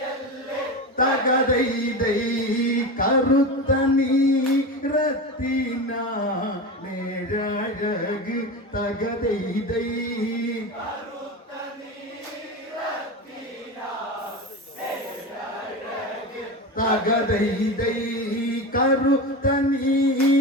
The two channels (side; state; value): both; normal; correlation 0.23